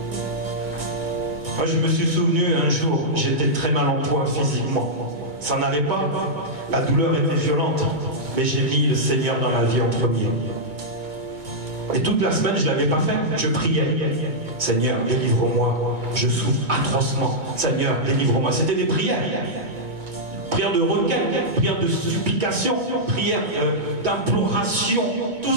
Moi, je me suis souvenu un jour, j'étais très mal en point physiquement. Ça n'allait pas. La douleur était violente. Mais j'ai mis le Seigneur dans ma vie en premier. Et toute la semaine, je ne l'avais pas fait. Je priais. Seigneur, délivre-moi. Je souffre atrocement. Seigneur, délivre-moi. C'était des prières. Prières de requête, prières de supplication, prières d'imploration. Tout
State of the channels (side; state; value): left; late; 2.2 ms